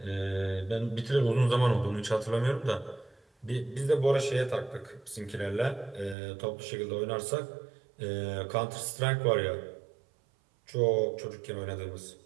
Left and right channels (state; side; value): drops out; left; at 6.2 s